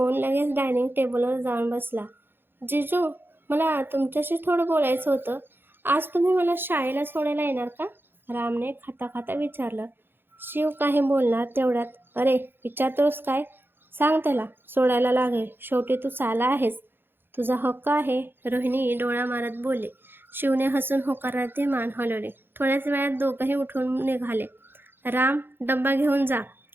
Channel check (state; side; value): late; left; 0.10 ms